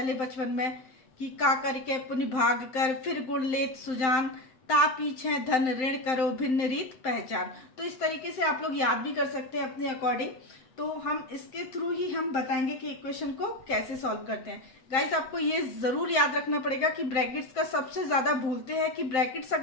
बचपन में कि का करके पुनि भाग कर, फिर गुण लेत सुजान, ता पीछे धन ऋण करो भिन्न रीत पहचान। तो इस तरीके से आप लोग याद भी कर सकते हैं अपने अकॉर्डिंग। तो हम इसके थ्रू ही हम बताएंगे कि इक्वेशन को कैसे सॉल्व करते हैं। गाइस, आपको ये जरूर याद रखना पड़ेगा कि ब्रैकेट्स का सबसे ज्यादा भूलते हैं कि ब्रैकेट्स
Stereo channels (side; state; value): right; late; 7.7 ms